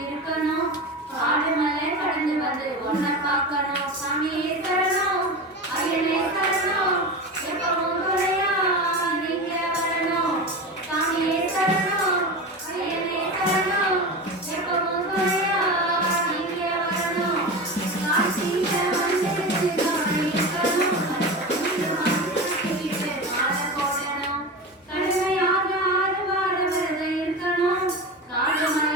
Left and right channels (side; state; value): both; normal; correlation 0.26